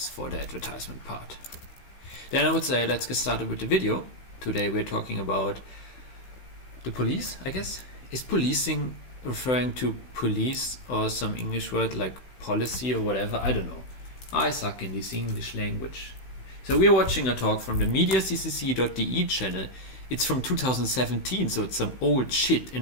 for the advertisement part. Then I would say let's get started with the video. Today we're talking about the police, I guess. Is policing referring to police or some English word like policy or whatever? I don't know. I suck in this English language. So we're watching a talk from the mediaccc.de channel. It's from 2017, so it's some old shit,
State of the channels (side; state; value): right; late; 16 ms